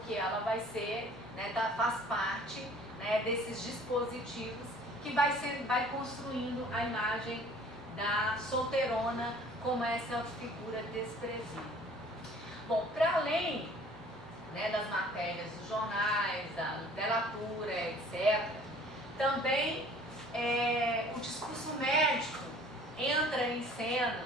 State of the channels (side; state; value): both; normal; correlation 0.51